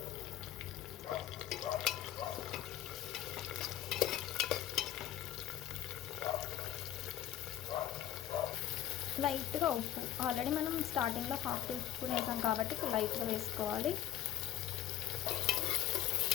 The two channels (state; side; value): quieter; right; 12.1 dB